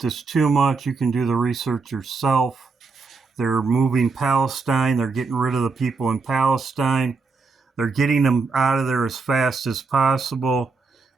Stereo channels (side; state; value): left; quieter; 4.5 dB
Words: this too much. You can do the research yourself. They're moving Palestine. They're getting rid of the people in Palestine. They're getting them out of there as fast as possible.